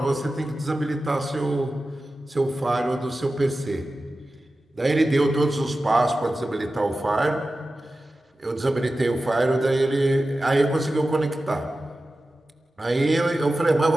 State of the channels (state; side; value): normal; both; correlation 0.94